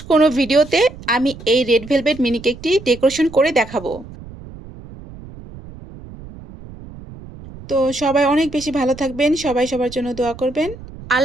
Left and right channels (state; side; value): noise; right; rumble, 16 dB below the sound